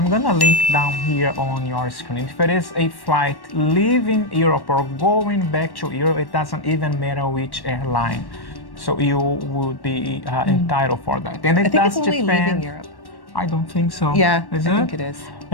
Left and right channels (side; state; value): right; late; 1.1 ms